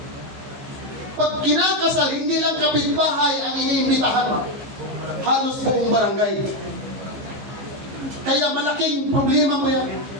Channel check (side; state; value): left; late; 14 ms